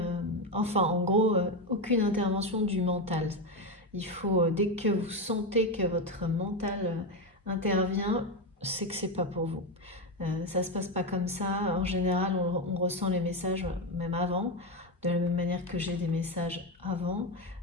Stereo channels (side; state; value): both; normal; correlation 0.11